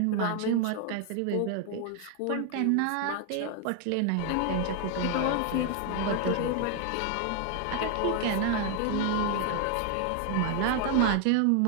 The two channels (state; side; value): different; both; correlation 0.00